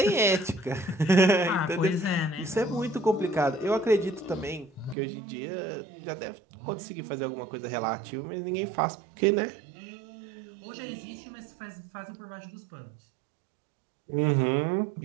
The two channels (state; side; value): drops out; left; at 5.0 s